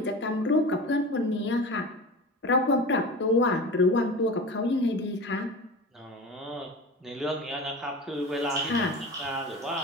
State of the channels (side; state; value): both; normal; correlation 0.32